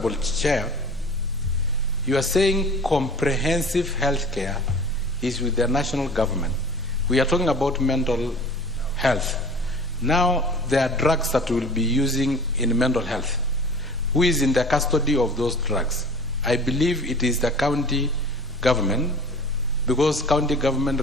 chair, You are saying comprehensive health care is with the national government. We are talking about mental health. Now, there are drugs that we'll be using in mental health. Who is in the custody of those drugs? I believe it is the county government, because county government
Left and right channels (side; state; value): both; normal; correlation 0.43